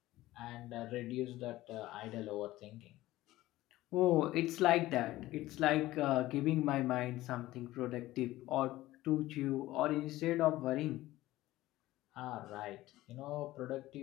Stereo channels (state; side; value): quieter; right; 16.6 dB